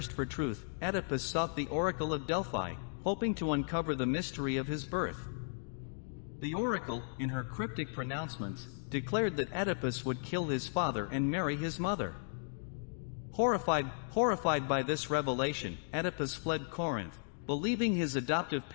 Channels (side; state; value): right; silent; digital silence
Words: for truth, Oedipus sought the oracle of Delphi, hoping to uncover the mystery of his birth. The oracle, in her cryptic pronouncements, declared that Oedipus would kill his father and marry his mother. Horrified by this revelation, Oedipus fled Corinth, believing his adoptive